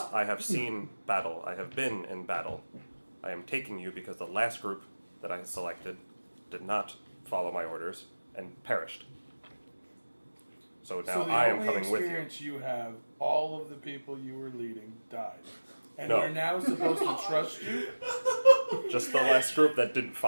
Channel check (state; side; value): inverted; both; correlation -1.00